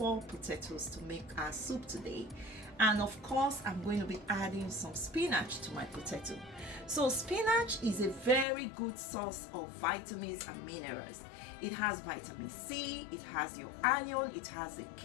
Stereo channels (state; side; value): drops out; right; at 8.5 s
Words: potatoes to make our soup today. And of course, I'm going to be adding some spinach to my potato. So spinach is a very good source of vitamins and minerals. It has vitamin C, it has your iron, it has a